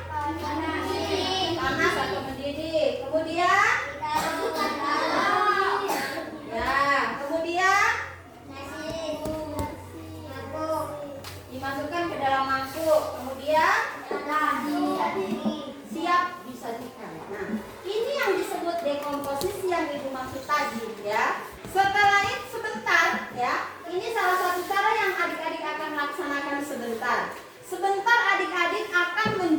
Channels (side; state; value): both; identical; correlation 1.00